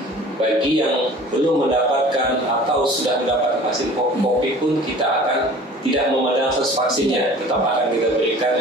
bagi yang belum mendapatkan atau sudah mendapatkan vaksin COVID pun kita akan tidak memandang status vaksinnya. Tetap akan kita berikan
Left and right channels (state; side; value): normal; both; correlation 0.45